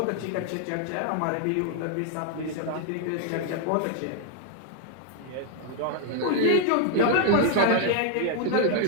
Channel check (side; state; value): both; different; correlation 0.00